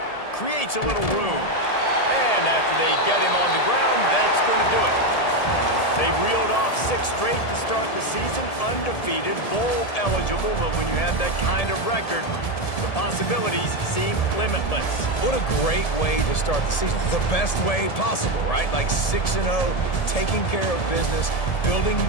Creates a little room. And after they get him on the ground, that's going to do it. They reeled off 6 straight to start the season, undefeated, bowl eligible, but when you have that kind of record, the possibilities seem limitless. What a great way to start the season. The best way possible, right? Like 6-0, taking care of business, building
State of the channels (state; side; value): late; right; 1.7 ms